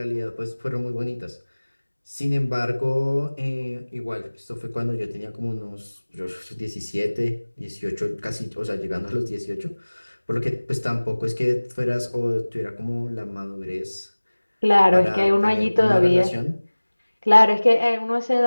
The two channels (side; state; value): both; inverted; correlation -1.00